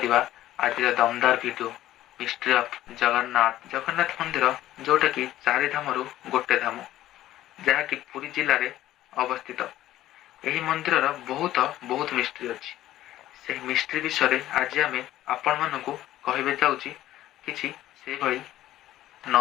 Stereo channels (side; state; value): right; quieter; 14.0 dB